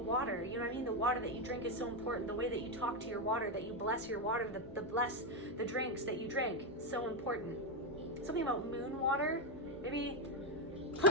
You know what I mean? The water that you drink is so important. The way that you talk to your water, that you bless your water, the bless the drinks that you drink, so important. Something about moon water. Maybe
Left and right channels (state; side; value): normal; both; correlation 0.06